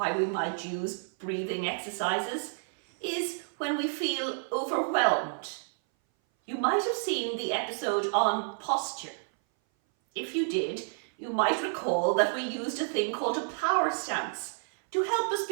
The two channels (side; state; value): left; silent; 58 dB below the other